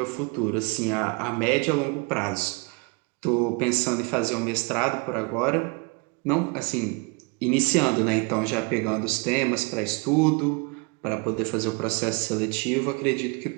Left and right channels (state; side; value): quieter; left; 30.1 dB